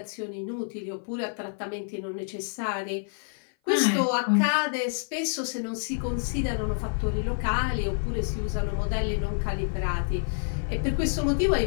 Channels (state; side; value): silent; right; 55 dB below the other